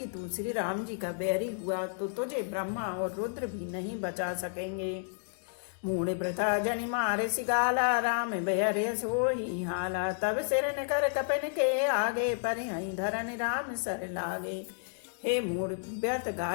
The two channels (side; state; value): right; silent; digital silence